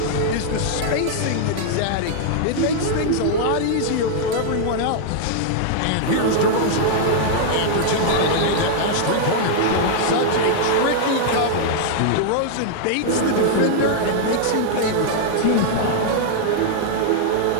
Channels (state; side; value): different; both; correlation -0.01